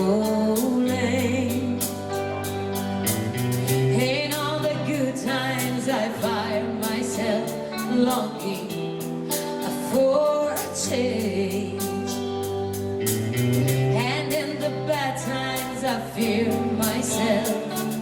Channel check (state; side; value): identical; both; correlation 1.00